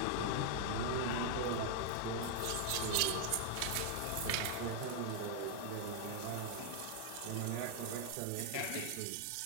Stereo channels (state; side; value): different; both; correlation 0.00